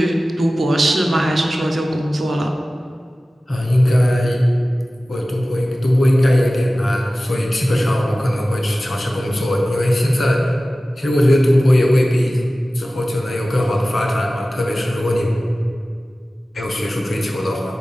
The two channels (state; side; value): normal; both; correlation 0.96